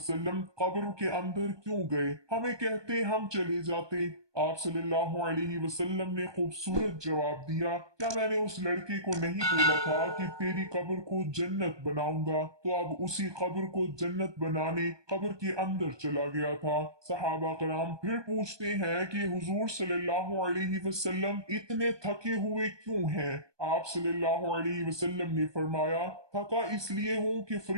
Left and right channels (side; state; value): left; late; 1.2 ms